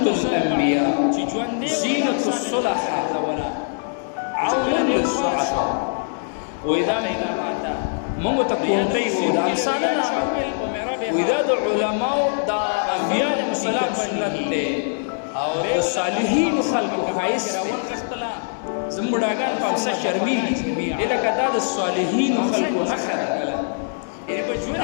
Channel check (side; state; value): right; silent; digital silence